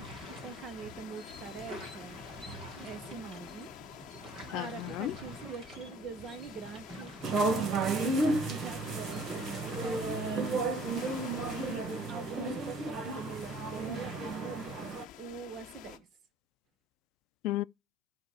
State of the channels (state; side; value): normal; both; correlation 0.53